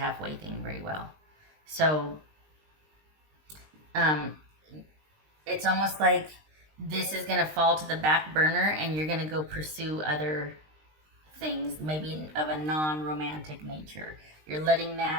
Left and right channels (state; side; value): late; left; 20 ms